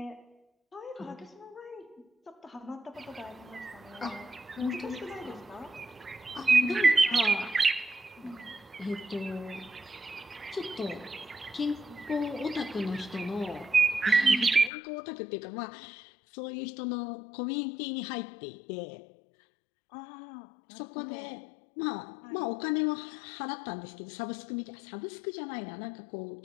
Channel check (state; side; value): drops out; right; at 14.7 s